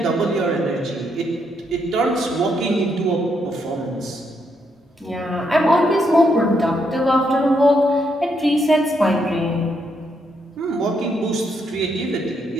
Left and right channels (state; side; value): normal; both; correlation 0.77